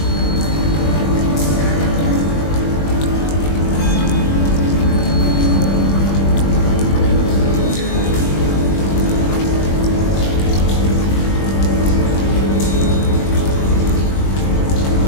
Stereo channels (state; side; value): late; right; 21 ms